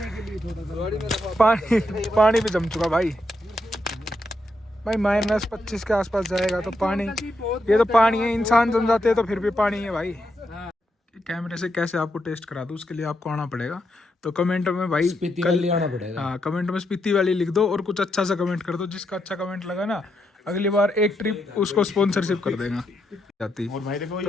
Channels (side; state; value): both; normal; correlation 0.81